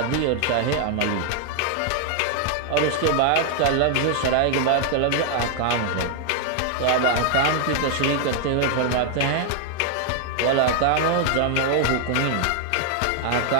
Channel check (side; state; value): both; different; correlation 0.00